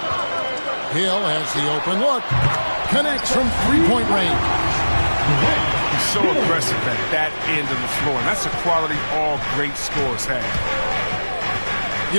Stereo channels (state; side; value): inverted; both; correlation -1.00